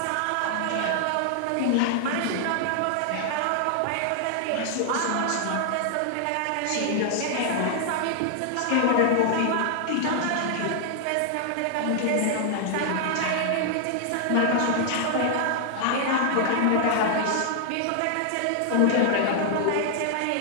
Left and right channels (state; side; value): different; both; correlation -0.01